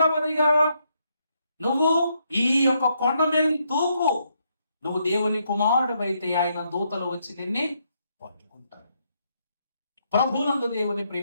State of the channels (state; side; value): inverted; both; correlation -0.76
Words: నువ్వు ఈ యొక్క కొండ మీద తూపు, నువ్వు దేవుని కుమారుడు అయితే ఆయన దూతలు వచ్చి నిన్ను పట్టుకుంటారు. ప్రభునందు దేవుని